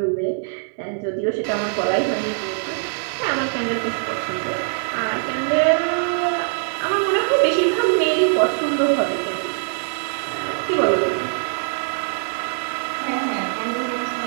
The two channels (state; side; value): silent; left; 61 dB below the other